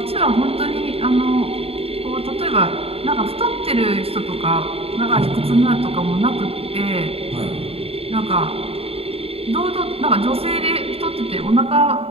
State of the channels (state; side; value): late; left; 0.28 ms